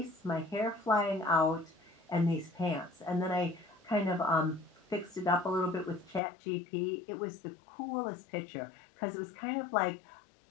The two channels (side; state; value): right; drops out; at 6.2 s